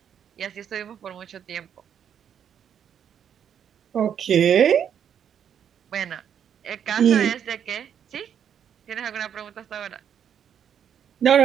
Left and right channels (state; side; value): quieter; left; 8.6 dB